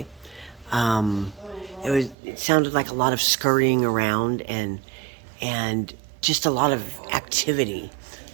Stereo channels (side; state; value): left; drops out; at 2.1 s